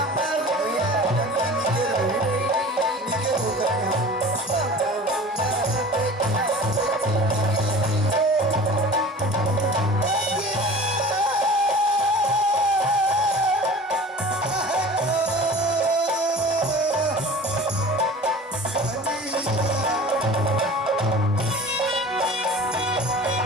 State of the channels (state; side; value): normal; both; correlation 0.40